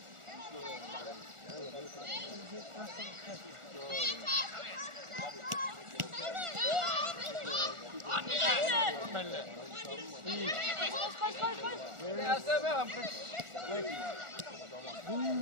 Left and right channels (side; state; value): left; late; 1.4 ms